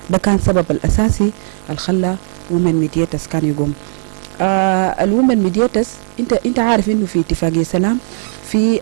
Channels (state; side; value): silent; left; digital silence